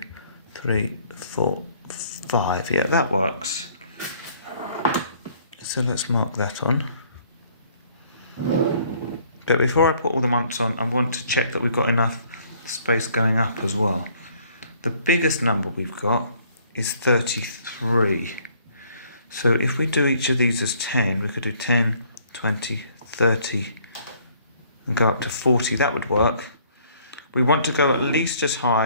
3, 4, 5. Yeah, that works. So let's mark that on. But before I put all the months on, I want to check that we've got enough space going up as well. The biggest number we've got is 33. So if we do each of these as 10, we could do 10, 20, 30, and go up to 40. That would work. We want to go at least as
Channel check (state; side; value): inverted; both; correlation -0.61